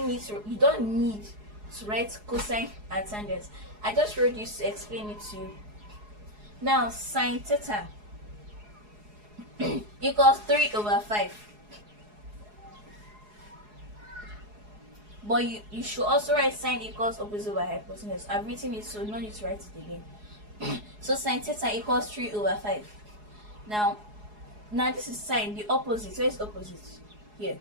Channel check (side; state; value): left; late; 4.8 ms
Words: to write cosine and tangents. I just wrote this to explain it to you. Now sine theta equals 3/5. But you should also write sine equals opposite over hypotenuse. I've written it, so no need to write it again. So sine theta equals 3/5. Now this is sine, the opposite. Where is opposite? Here.